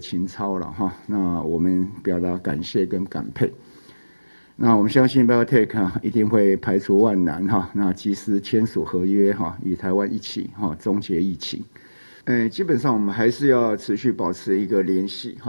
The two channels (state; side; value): inverted; both; correlation -1.00